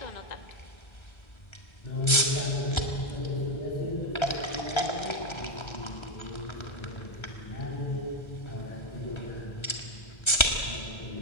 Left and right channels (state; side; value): late; right; 1.3 ms